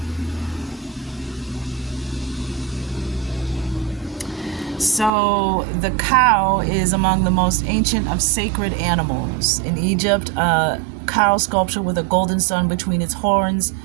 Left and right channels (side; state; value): left; drops out; at 5.1 s